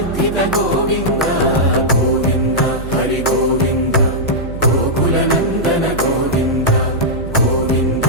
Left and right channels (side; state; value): right; noise; hum, 9 dB below the sound